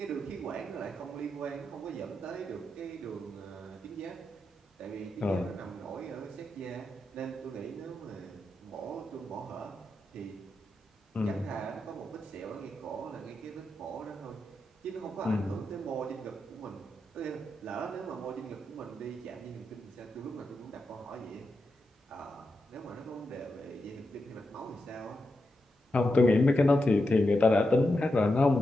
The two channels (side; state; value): both; normal; correlation 0.87